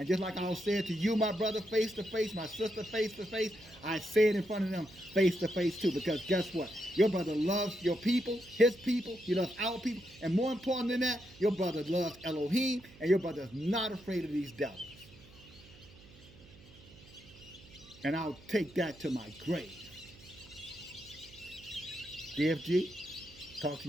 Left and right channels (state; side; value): noise; right; hum, 22 dB below the sound